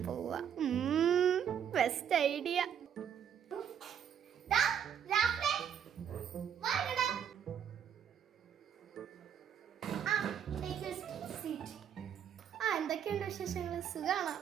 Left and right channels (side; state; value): left; quieter; 8.6 dB